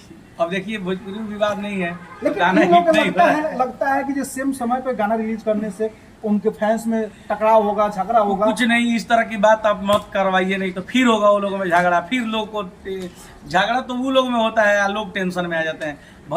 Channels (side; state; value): both; identical; correlation 1.00